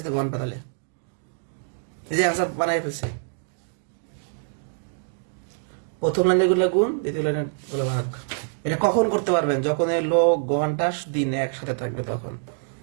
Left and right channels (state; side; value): silent; left; digital silence